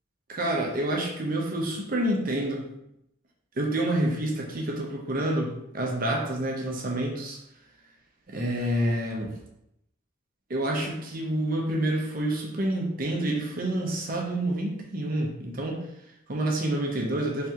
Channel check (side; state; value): both; normal; correlation 0.57